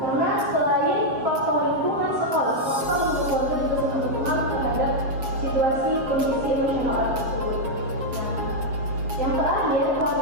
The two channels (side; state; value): left; late; 7.3 ms